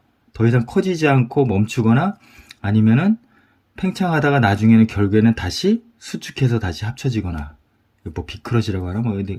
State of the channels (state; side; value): identical; both; correlation 1.00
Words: 더 이상 커지지 않고 멈추거나 아니면은 팽창하다가 나중에는 결국에는 다시 수축해서 다시 합쳐지거나 뭐 비크러시라고 하나 뭐